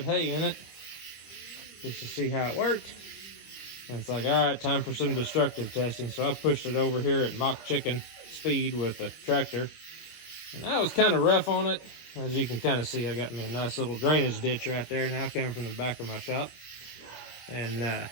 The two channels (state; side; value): late; right; 26 ms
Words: hay in it just to see how it worked. And it's like, all right, time for some destructive testing. So I pushed it over here at mock chicken speed with the tractor. And I was kind of rough on it. As you can kind of see, I got me a nice little drainage ditch right there now coming from the back of my shop. And